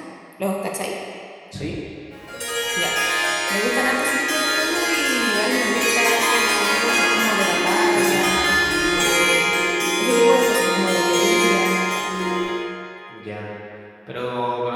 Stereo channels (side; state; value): both; identical; correlation 1.00